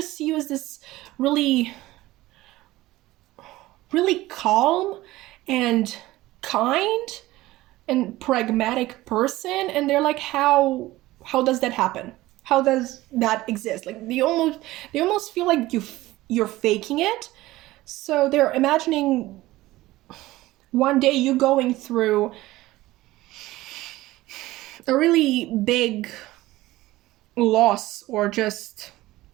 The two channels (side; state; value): left; quieter; 17.6 dB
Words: see you as this really, really calm and kind and pragmatic person, and they're like, how does that happen? How does that exist? Like, they almost feel like you're faking it. So they're imagining one day you going through a really big loss, or just